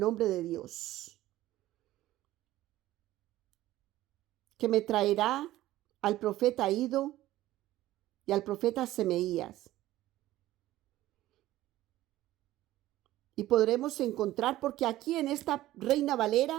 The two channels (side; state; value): left; quieter; 15.4 dB